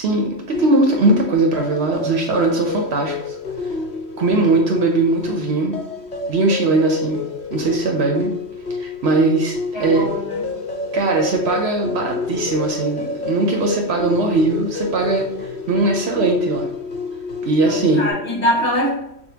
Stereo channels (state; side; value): late; left; 3.1 ms